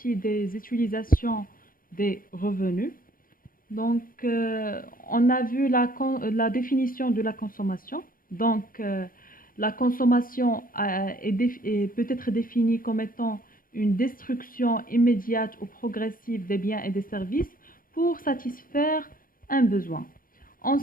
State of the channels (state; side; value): late; right; 0.41 ms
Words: des utilisations des revenus. Donc on a vu la définition de la consommation. Donc la consommation peut être définie comme étant une destruction immédiate ou progressive des biens et des services pour satisfaire un besoin.